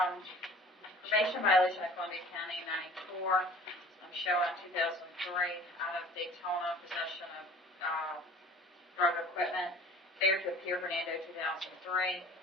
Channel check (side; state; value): both; normal; correlation 0.47